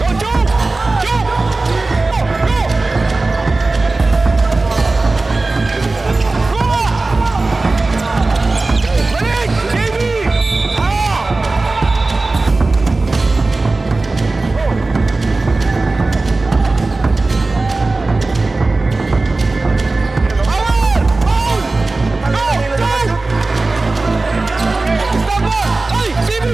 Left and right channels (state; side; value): quieter; left; 3.4 dB